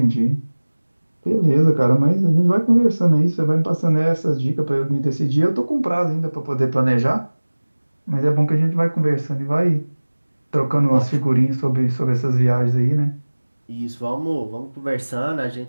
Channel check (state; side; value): inverted; both; correlation -1.00